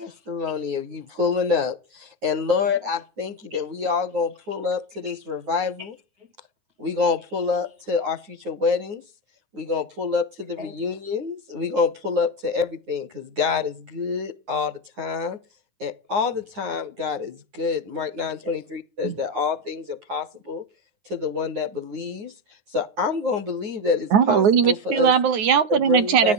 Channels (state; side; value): late; left; 9.5 ms